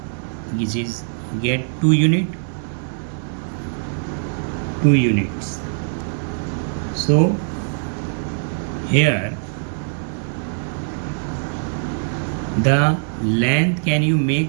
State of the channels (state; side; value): silent; left; digital silence